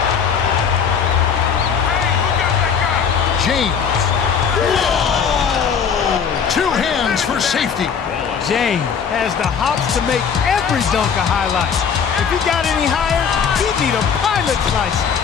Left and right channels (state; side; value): quieter; right; 6.8 dB